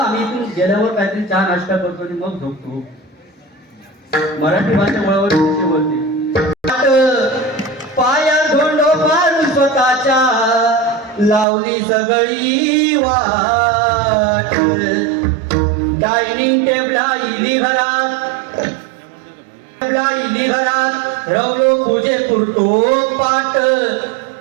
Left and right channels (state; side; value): drops out; left; at 11.5 s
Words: आम्ही इथून गेल्यावर काहीतरी चहा नाश्ता करतो आणि मग झोपतो. मराठी भाषा वळवळ कशी बोलते पाया धोंडो मारून स्वतःच्या लावली सगळी वाट डायनिंग टेबला इली घरात रवलो पूजे पुरतो पाट